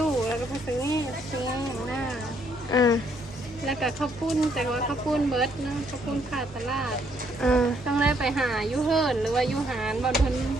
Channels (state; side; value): normal; both; correlation 0.70